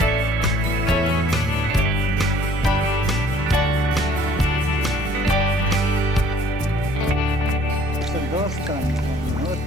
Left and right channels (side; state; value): both; normal; correlation 0.57